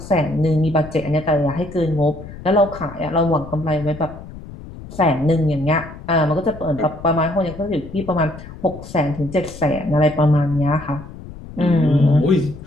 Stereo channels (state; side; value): noise; left; rumble, 15 dB below the sound